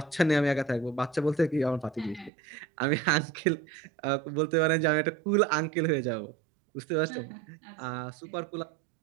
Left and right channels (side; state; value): left; drops out; at 2.3 s